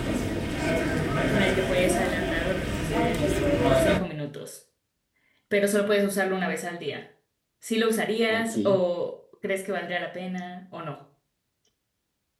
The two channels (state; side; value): identical; both; correlation 1.00